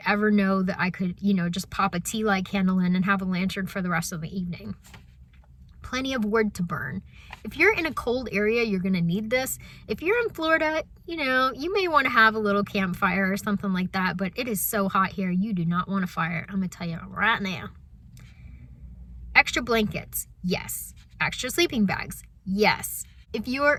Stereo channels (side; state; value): both; identical; correlation 1.00